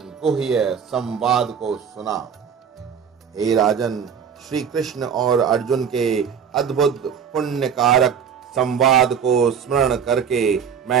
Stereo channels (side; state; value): left; quieter; 7.3 dB